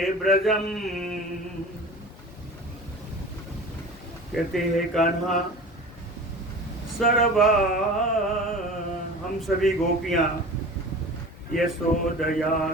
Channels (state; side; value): normal; both; correlation 0.37